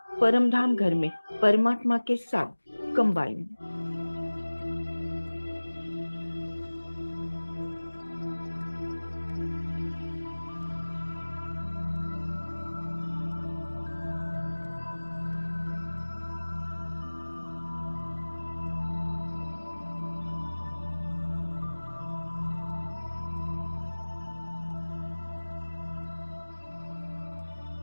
परमधाम घर में परमात्मा के साथ कंबाइन।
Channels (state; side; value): inverted; both; correlation -1.00